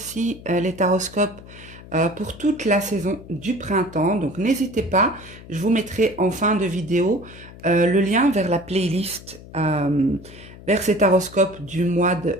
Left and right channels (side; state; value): left; noise; hum, 18 dB below the sound